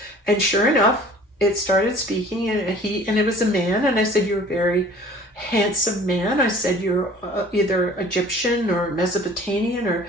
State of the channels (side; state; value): both; normal; correlation 0.48